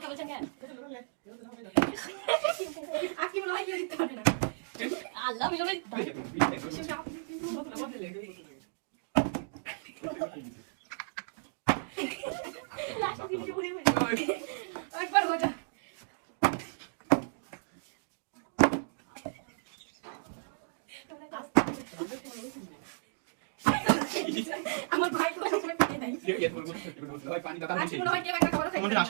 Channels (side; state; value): left; silent; digital silence